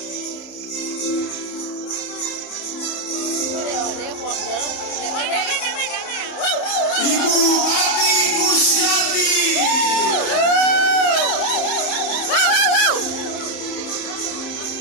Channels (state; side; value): late; right; 31 ms